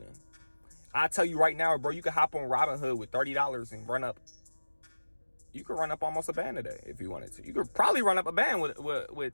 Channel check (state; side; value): inverted; both; correlation -1.00